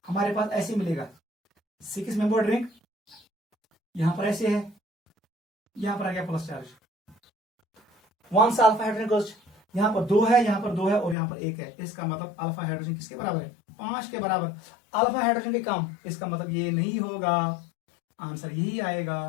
हमारे पास ऐसे मिलेगा 6 मेंबर रिंग, यहां पर ऐसे है, यहां पर आ गया प्लस चार्ज। 1 से अल्फा हाइड्रोजन गोज, यहां पर 2 है, यहां पर 2 है और यहां पर 1 है, इसका मतलब अल्फा हाइड्रोजन किसके बराबर है? 5 के बराबर। अल्फा हाइड्रोजन के कम, इसका मतलब ये नहीं होगा, आंसर यही आएगा।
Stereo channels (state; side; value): drops out; right; at 11.2 s